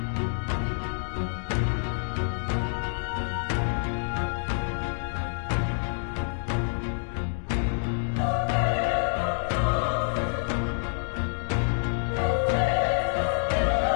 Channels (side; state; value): right; silent; digital silence